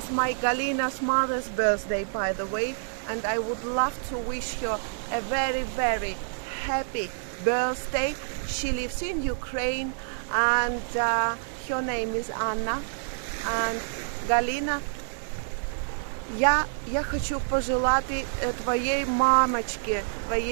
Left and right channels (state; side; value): silent; left; digital silence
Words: my Galina's mother's birthday, by the way, and I would love to wish her a very, very happy birthday. She lives in Ukraine, and her name is Anna. And Галина, я хочу пожелать твоей мамочке,